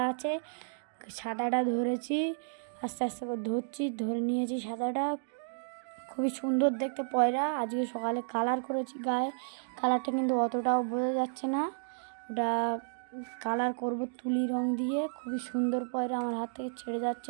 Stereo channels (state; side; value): silent; left; digital silence